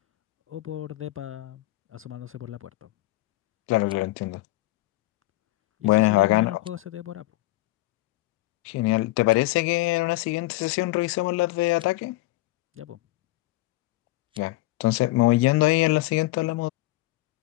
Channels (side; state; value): right; quieter; 18.8 dB